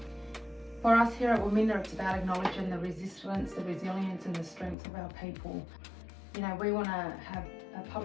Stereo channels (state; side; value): drops out; right; at 4.8 s